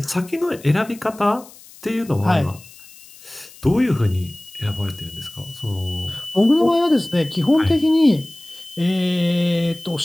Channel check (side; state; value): left; noise; hiss, 22 dB below the sound